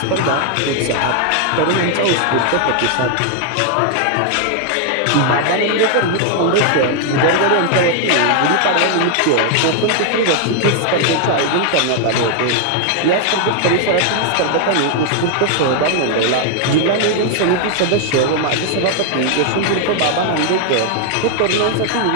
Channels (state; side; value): different; both; correlation 0.00